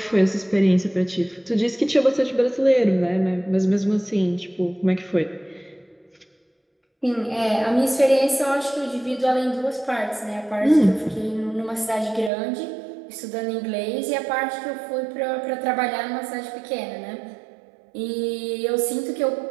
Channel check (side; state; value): left; drops out; at 12.3 s